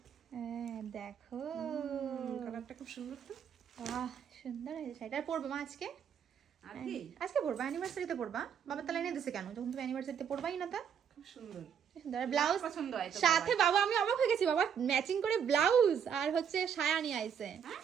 হ্যাঁ দেখো কালারটা খুব সুন্দর তো। বাহ সুন্দর হয়েছে শাড়িটা। পরবে মা আজকে? আর কি আজকে পরবা? অ্যানিভার্সারিতে পরবা? বাবার তাহলে এনে দিছে কেন, যখন তুমি অ্যানিভার্সারিতে পরবাই না? তা খুব সুন্দর সুন্দর ব্লাউজ পছন্দ হয় তো সাথে। বাবা আমি অবাক হয়ে গেছি, বাবা ম্যাচিং করে ব্লাউজ আর হচ্ছে সায়া নিয়ে আইছে।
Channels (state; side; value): quieter; left; 7.8 dB